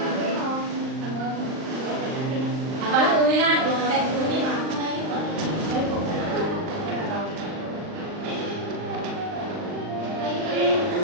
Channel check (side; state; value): left; late; 39 ms